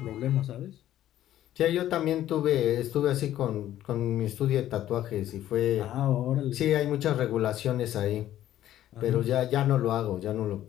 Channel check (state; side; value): quieter; right; 12.7 dB